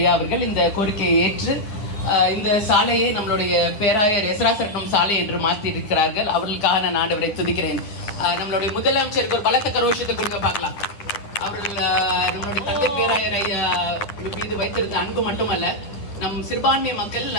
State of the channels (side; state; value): right; late; 10 ms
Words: அவர்கள் இந்த கோரிக்கையை ஏற்று இந்த சாலையை நம்மளுடைய பேராயர் எஸ்ராசரட்னம் சாலை என்று மாற்றி இருக்கிறார்கள். அவர்களுக்காக நான் ஆண்டவரை துதிக்கிறேன். நம்மளுடைய முதலமைச்சருக்கு ஒரு பலத்த கரோஷத்தை கொடுக்க பார்க்கலாம். அவர்கள் நம்மளுடைய தந்தை பேராயர் ஐயா மீது வைத்திருந்த அன்பு மட்டுமல்ல, நம் சிறுபான்மை மக்கள்